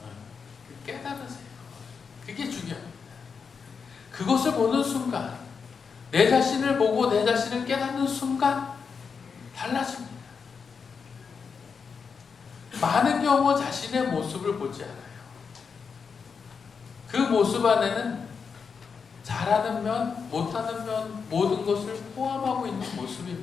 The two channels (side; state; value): right; quieter; 5.8 dB